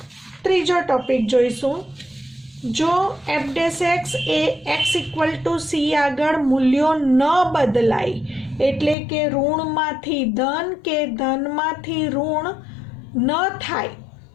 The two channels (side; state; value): right; drops out; at 9.0 s